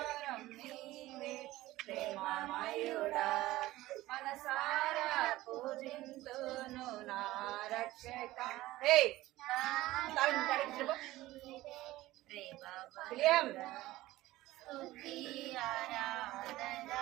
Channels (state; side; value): quieter; left; 17.1 dB